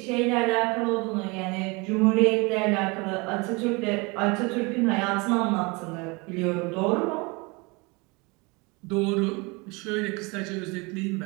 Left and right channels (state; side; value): quieter; left; 27.3 dB